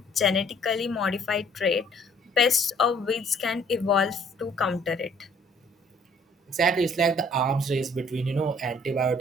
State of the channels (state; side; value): normal; both; correlation 0.60